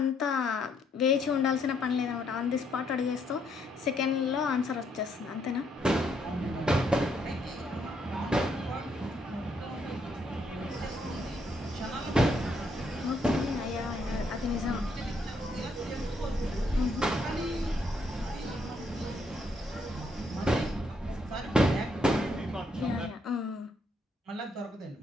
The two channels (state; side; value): normal; both; correlation 0.73